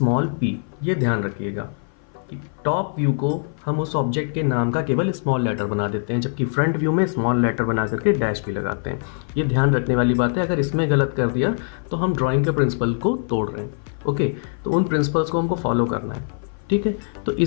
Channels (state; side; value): silent; right; 56 dB below the other